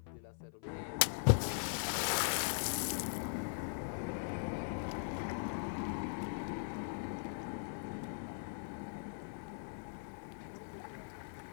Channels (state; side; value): silent; right; 51 dB below the other